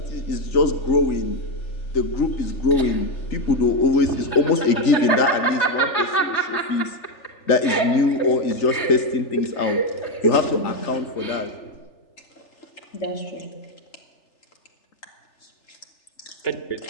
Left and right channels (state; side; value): late; right; 3.4 ms